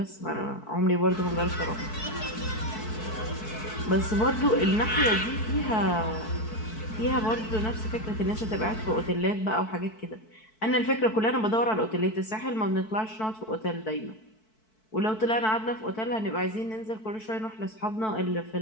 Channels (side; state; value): right; late; 4.6 ms